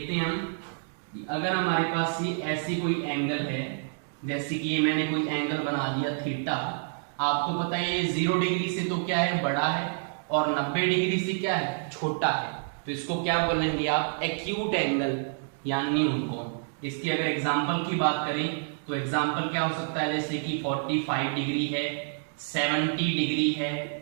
हैं हम, अगर हमारे पास ये ऐसी कोई एंगल है, जैसे कि ये मैंने कोई एंगल बना दिया थीटा। आपको पता है ये 0 डिग्री से तो क्या है, बड़ा है, और 90 डिग्री से क्या है, छोटा है। तो इसको क्या बोलेंगे आप? एक्यूट एंगल या न्यून कोण। इसकी अगर एग्जाम्पल की बात करें तो एग्जाम्पल क्या हो सकता है, जैसे कि 45 डिग्री है, 70 डिग्री है,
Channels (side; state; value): left; silent; digital silence